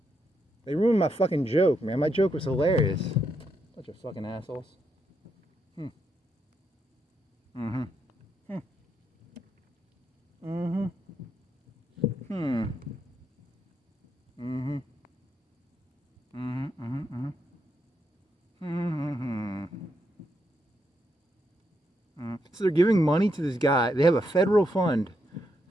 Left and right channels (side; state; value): both; normal; correlation 0.80